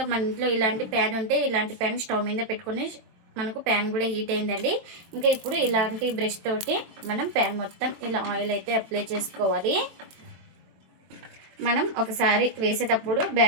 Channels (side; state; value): left; late; 22 ms